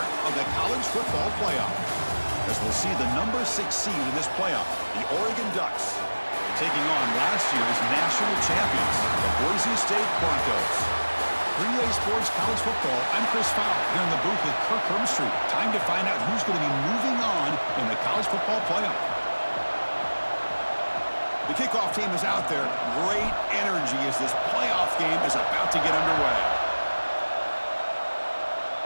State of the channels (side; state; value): both; inverted; correlation -1.00